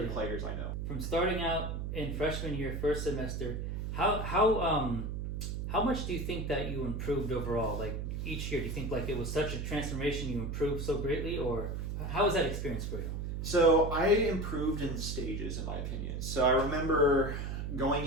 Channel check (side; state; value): right; noise; hum, 3 dB below the sound